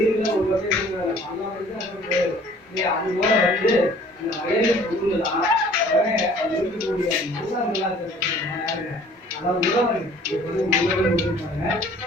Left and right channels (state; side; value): normal; both; correlation 0.52